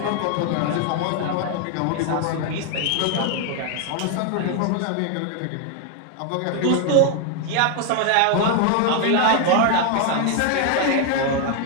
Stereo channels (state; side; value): different; both; correlation 0.00